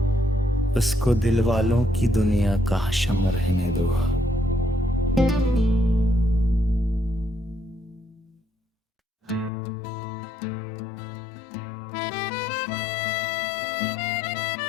उसको दिल वालों की दुनिया का हशम रहने दो।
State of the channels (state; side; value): drops out; right; at 9.5 s